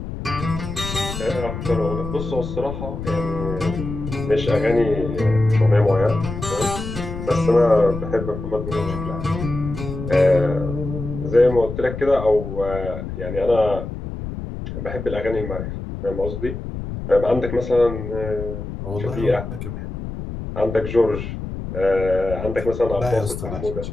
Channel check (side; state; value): left; noise; rumble, 7 dB below the sound